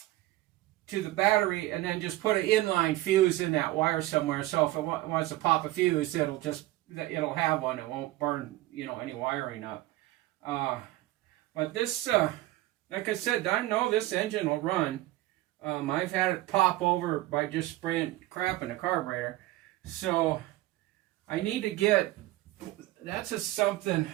to the battery, and then just put an inline fuse in that wire somewhere. So if it wants to pop a fuse, it'll have one. It won't burn, any wiring up. But this, like I said, I know this engine will run. I've had it pop over by just spraying crap in the carburetor. So I need to get, that's just something,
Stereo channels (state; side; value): quieter; left; 17.2 dB